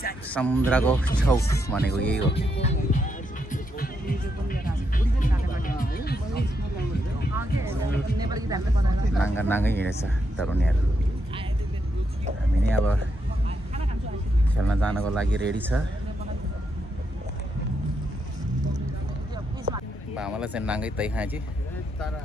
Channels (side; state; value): both; normal; correlation 0.80